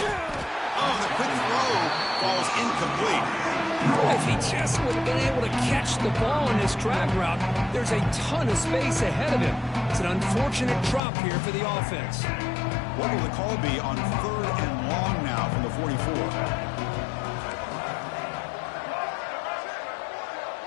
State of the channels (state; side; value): drops out; right; at 11.0 s